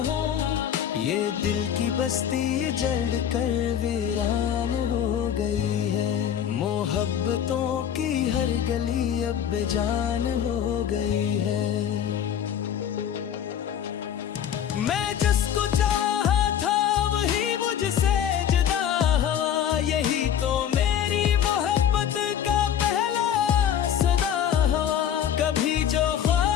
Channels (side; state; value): right; quieter; 9.3 dB